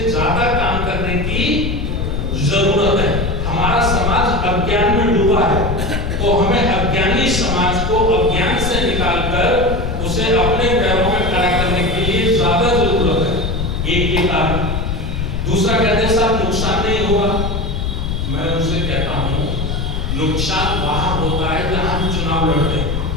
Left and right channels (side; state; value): left; noise; rumble, 2 dB below the sound